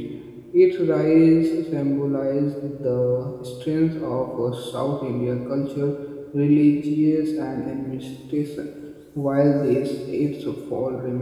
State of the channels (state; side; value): identical; both; correlation 1.00